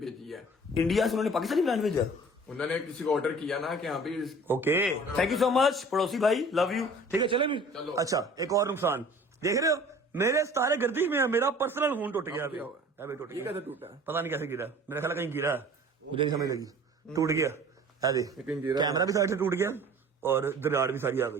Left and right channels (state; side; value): normal; both; correlation 0.47